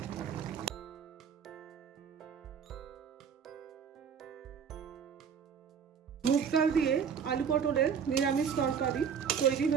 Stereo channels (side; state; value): left; quieter; 7.1 dB